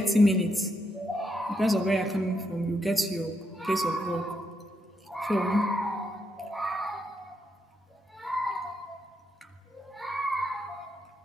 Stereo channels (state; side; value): normal; both; correlation 0.80